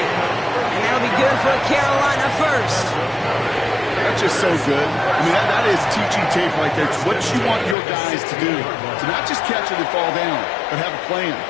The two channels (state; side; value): drops out; right; at 7.8 s